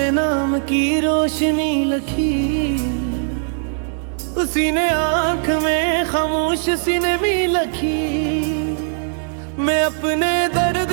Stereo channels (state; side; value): silent; left; 66 dB below the other